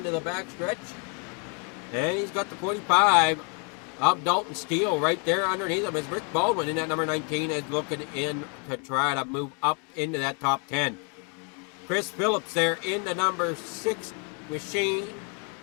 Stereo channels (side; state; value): right; quieter; 37.7 dB